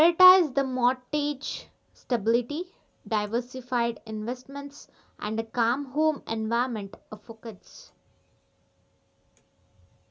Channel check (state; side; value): identical; both; correlation 1.00